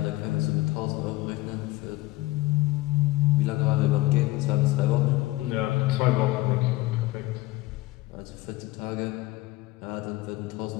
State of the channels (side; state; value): right; quieter; 18.8 dB